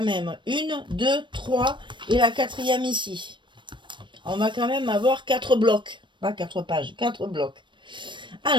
même. 1, 2, 3 et la 4e ici. On va quand même avoir 4 blocs. Pas 4 pages, 4 blocs.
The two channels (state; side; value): late; left; 0.23 ms